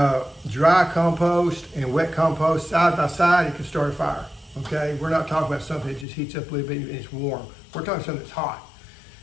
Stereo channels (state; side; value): drops out; right; at 6.1 s